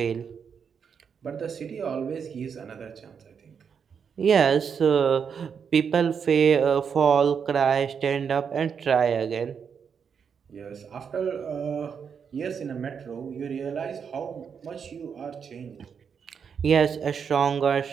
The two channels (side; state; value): left; quieter; 6.8 dB